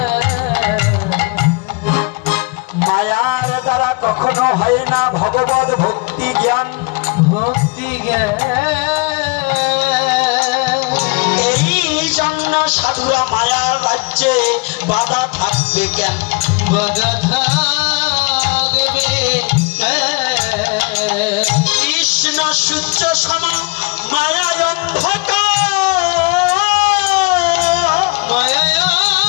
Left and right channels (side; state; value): right; quieter; 29.3 dB